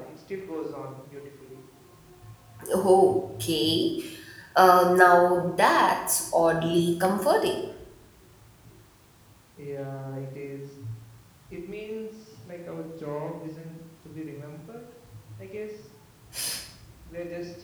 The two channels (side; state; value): both; identical; correlation 1.00